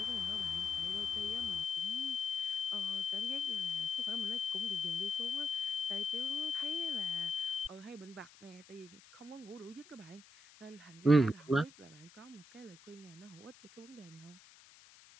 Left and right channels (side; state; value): left; noise; hiss, 22 dB below the sound